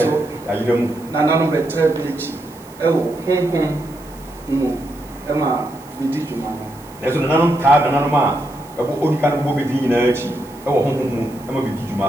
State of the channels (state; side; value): noise; right; hiss, 24 dB below the sound